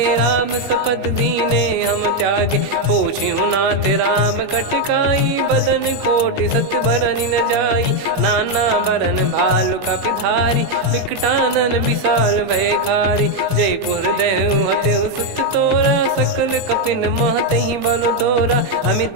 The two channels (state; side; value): late; left; 21 ms